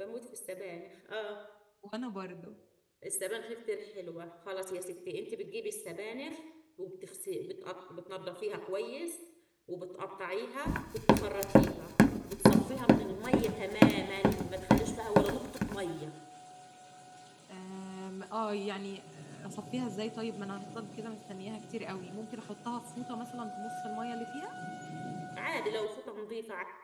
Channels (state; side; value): identical; both; correlation 1.00